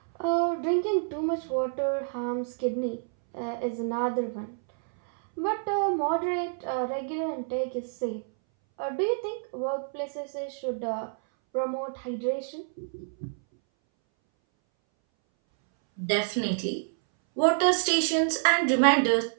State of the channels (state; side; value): silent; left; 59 dB below the other